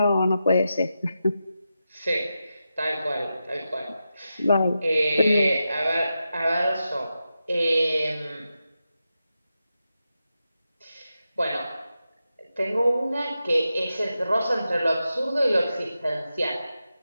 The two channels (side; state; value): both; inverted; correlation -0.89